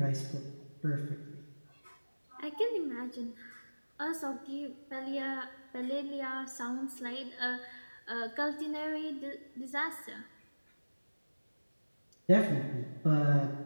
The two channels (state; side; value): inverted; both; correlation -1.00